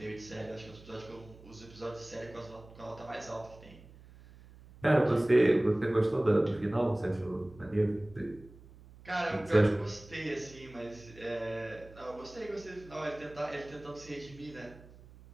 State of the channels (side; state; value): right; noise; hum, 21 dB below the sound